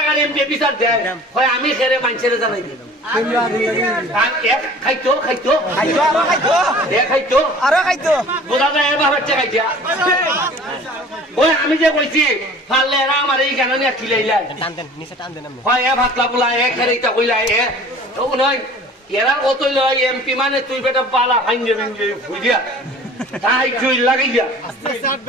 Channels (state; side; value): normal; both; correlation 0.46